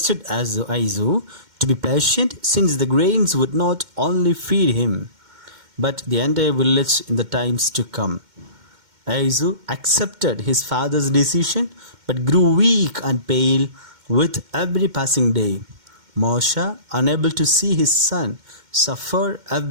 Aizu to be patient, since the grains would not only feed him, but the entire village in the times to come. Aizu accepted his father's decision, but grew weak and pale with every passing day. Mausha, unable to see his son suffer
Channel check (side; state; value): left; late; 2.1 ms